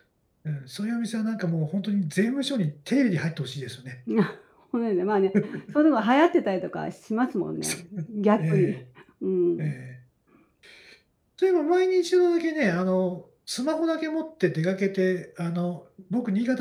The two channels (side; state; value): both; identical; correlation 1.00